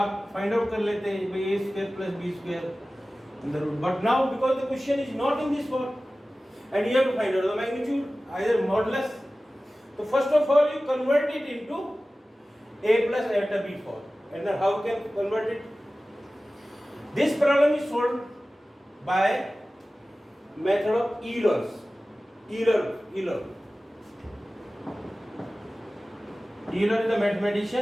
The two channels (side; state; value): both; normal; correlation 0.96